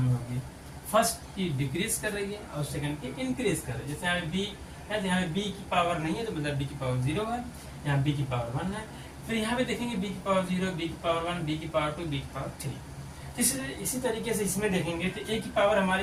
होगी। फर्स्ट की डिक्रीज कर रही है और सेकंड की इंक्रीज कर रही है। जैसे यहाँ बी है, यहाँ बी की पावर नहीं है तो मतलब बी की पावर 0 है, यहाँ बी की पावर 1 है। फिर यहाँ पे देखेंगे बी की पावर 0, बी की पावर 1, बी की पावर 2, बी की पावर 3। इसी तरीके से इसमें देखेंगे तो ए की पावर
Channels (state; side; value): identical; both; correlation 1.00